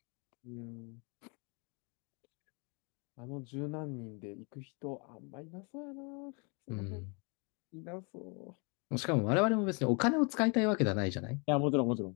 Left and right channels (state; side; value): quieter; right; 34.1 dB